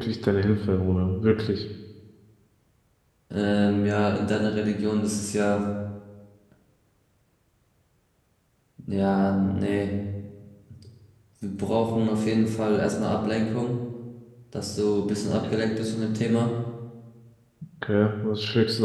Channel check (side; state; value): both; identical; correlation 1.00